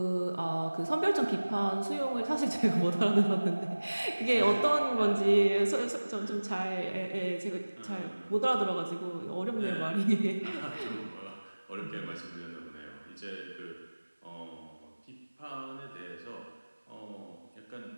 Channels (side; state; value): both; inverted; correlation -1.00